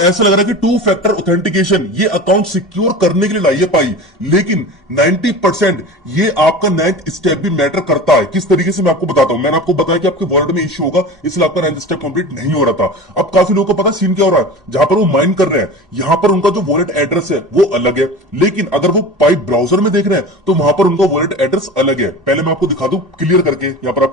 लग रहा है कि 2 फैक्टर ऑथेंटिकेशन ये अकाउंट सिक्योर करने के लिए लाई है पाई, लेकिन 90% ये आपका 9th स्टेप भी मैटर करता है। किस तरीके से मैं आपको बताता हूं। मैंने आपको बताया कि आपके वॉलेट में इश्यू होगा, इसलिए आपका 9th स्टेप कंप्लीट नहीं हो रहा था। अब काफी लोगों को पता सीन क्या हो रहा है, जहां पर वो माइन कर रहे हैं यहां पर उनका जो वॉलेट एड्रेस है वो अलग है, लेकिन अगर वो पाई ब्राउजर में देख रहे हैं तो वहां पर उनका वॉलेट एड्रेस अलग है। पहले मैं आपको दिखा दूं क्लियर करके, यहां पर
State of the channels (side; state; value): both; normal; correlation 0.33